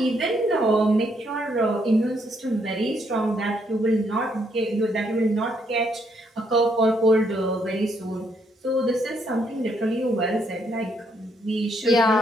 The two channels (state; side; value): normal; both; correlation 0.73